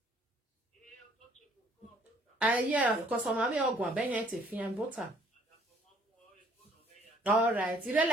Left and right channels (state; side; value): normal; both; correlation 0.60